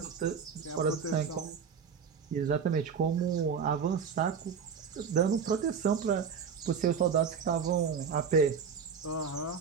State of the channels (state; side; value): quieter; left; 6.5 dB